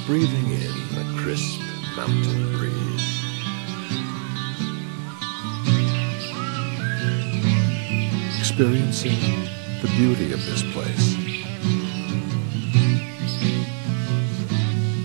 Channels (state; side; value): silent; left; digital silence